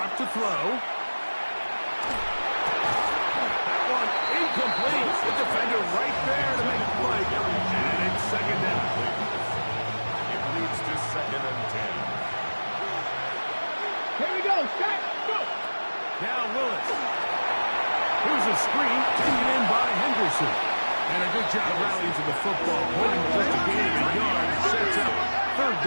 to throw. That one incomplete. The defender right there to make the play. And it's second down. It leads to second and 10. Here we go. Shot. Go. Now Willis. Here's a screen taken in by Henderson. And a good job rallying to the football. Holding just a gain of a yard. Sets up third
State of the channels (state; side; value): inverted; both; correlation -1.00